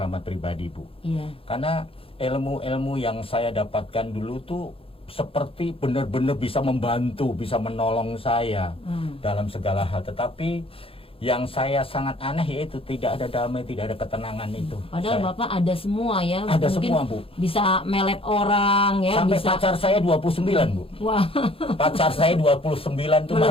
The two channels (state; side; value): late; right; 0.27 ms